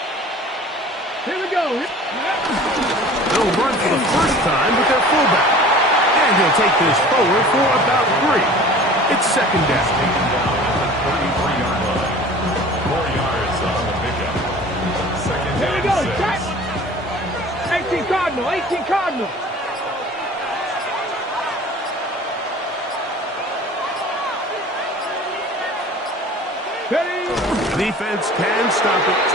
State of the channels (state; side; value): normal; both; correlation 0.44